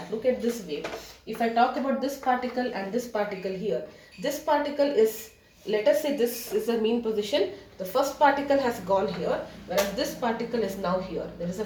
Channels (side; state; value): both; identical; correlation 1.00